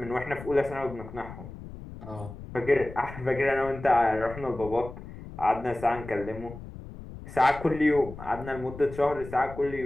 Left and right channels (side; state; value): left; noise; rumble, 13 dB below the sound